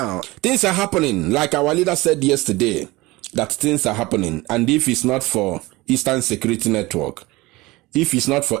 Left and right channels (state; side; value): quieter; left; 20.9 dB